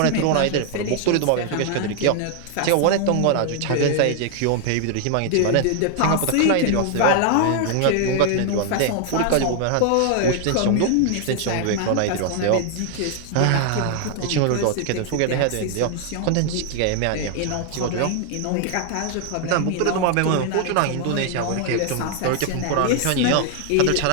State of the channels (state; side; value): different; both; correlation 0.00